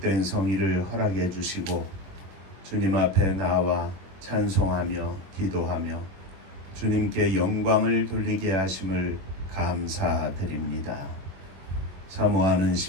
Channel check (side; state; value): left; late; 22 ms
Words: 성의를 허락해 주시고 주님 앞에 나와 찬송하며 기도하며 주님께 영광을 돌리게 하심을 감사드립니다. 사모하는